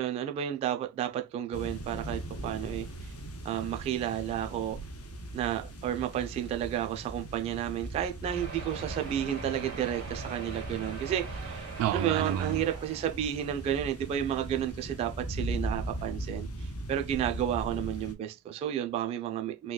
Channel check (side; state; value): left; quieter; 8.2 dB